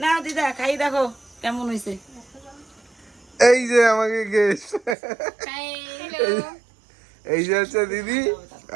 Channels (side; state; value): left; drops out; at 5.0 s